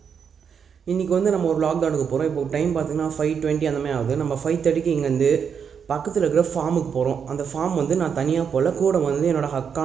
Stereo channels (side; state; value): left; quieter; 7.0 dB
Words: இன்னைக்கு நம்ம ஒரு vlog தான் எடுக்க போறோம். இப்போ டைம் பாத்தீங்கன்னா 5:20 அந்த மாதிரி ஆகுது. நம்ம 5:30க்கு இங்க இருந்து பக்கத்தில் இருக்கிற ஃபார்முக்கு போகிறோம். அந்த ஃபார்ம் நான் தனியாக போகல, கூட என்னோட